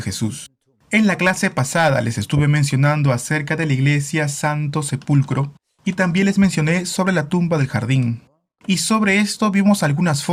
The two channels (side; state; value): both; identical; correlation 1.00